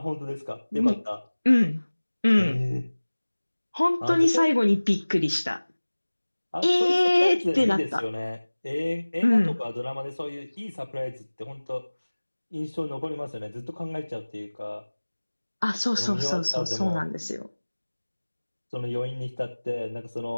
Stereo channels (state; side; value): inverted; both; correlation -1.00